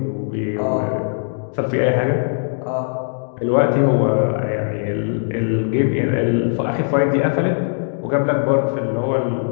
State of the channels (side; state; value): right; silent; digital silence